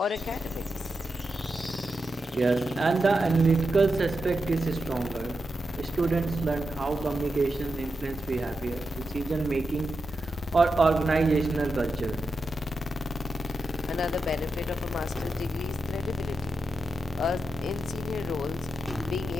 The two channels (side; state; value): both; normal; correlation 0.88